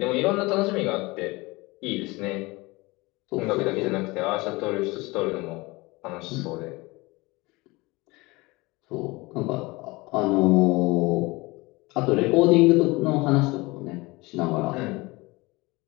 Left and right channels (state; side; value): quieter; right; 23.1 dB